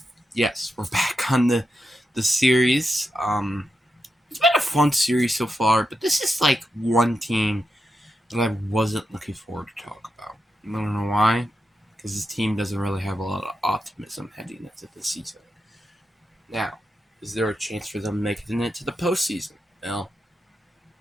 yes, we're back on the series. It's been a fun series so far, but this is like one team that I wasn't looking forward to talk about. I don't know why, because this team doesn't really have a lot of optimism heading into the season. Now, is there a chance for them making it to the postseason? Well,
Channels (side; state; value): both; normal; correlation 0.87